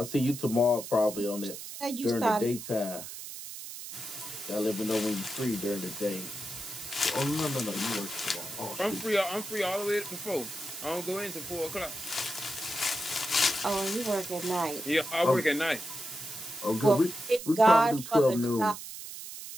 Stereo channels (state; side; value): noise; right; hiss, 10 dB below the sound